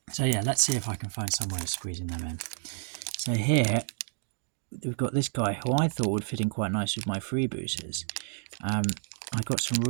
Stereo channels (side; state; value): left; silent; digital silence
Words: So yeah, let's see if I can find some way of squeezing them in. So here, we've got this guy who I thought would fit in quite nice with my freebooters. I got some